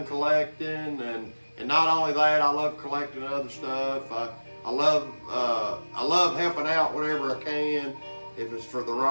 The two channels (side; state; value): both; inverted; correlation -1.00